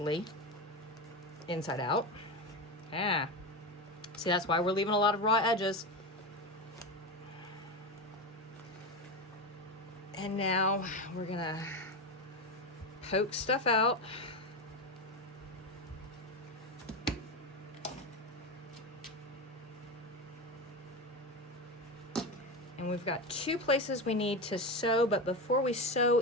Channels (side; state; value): both; normal; correlation 0.18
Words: inside out. Yeah. See, that's why we're leaving a lot of raw edges. And now we're gonna poke stuff out. And we've got 2 places we need to sew, but before we sew